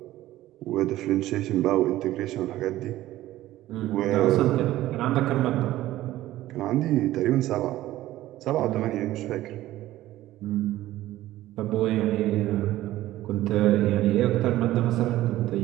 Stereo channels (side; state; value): left; quieter; 15.2 dB